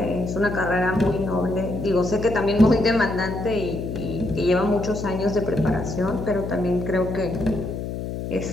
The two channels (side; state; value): left; noise; hum, 5 dB below the sound